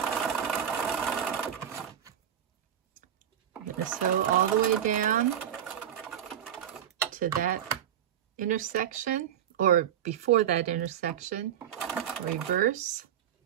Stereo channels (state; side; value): quieter; left; 9.8 dB